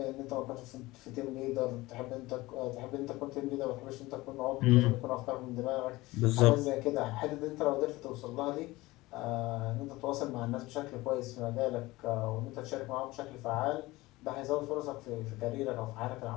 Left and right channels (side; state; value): right; quieter; 19.9 dB